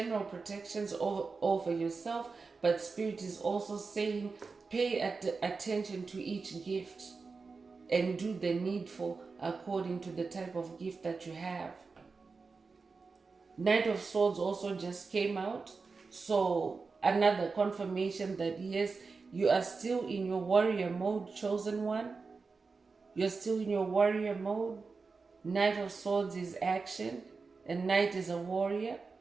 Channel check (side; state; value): left; quieter; 4.5 dB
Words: protections over yourself, but Spirit is also saying pay attention to each gift and do the needful according to the type of gift that you have. Knight of Swords also just came out, so another confirmation that yes, you are still in your warrior mode, chosen one. You're still in your warrior mode. Knight of Swords is action, and Knight is a warrior,